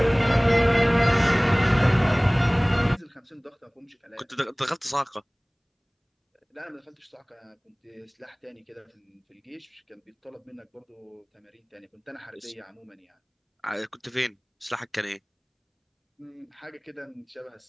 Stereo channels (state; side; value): identical; both; correlation 1.00